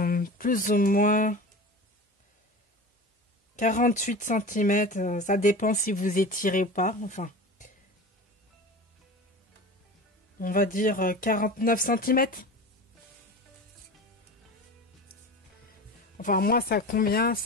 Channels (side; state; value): both; normal; correlation 0.32